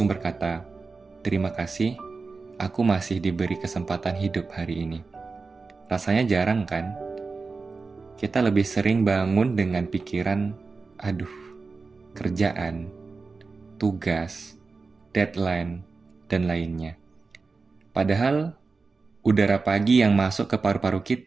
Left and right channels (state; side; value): quieter; left; 4.2 dB